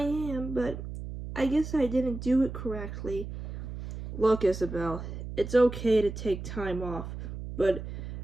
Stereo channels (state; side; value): noise; right; hum, 8 dB below the sound